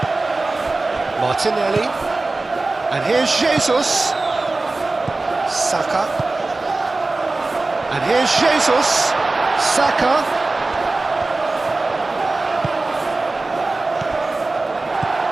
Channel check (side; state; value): left; quieter; 3.3 dB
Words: Martinelli. And here's Jesus. Saka. And here's Jesus. Saka.